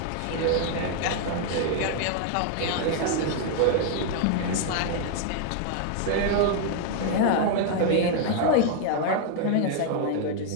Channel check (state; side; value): different; both; correlation 0.00